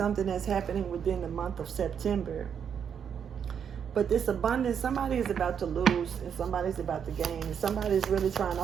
that's happening within the month of September. But this abundance, somebody is about to lose and somebody's about to gain. And somebody's really trying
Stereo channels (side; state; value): left; quieter; 7.7 dB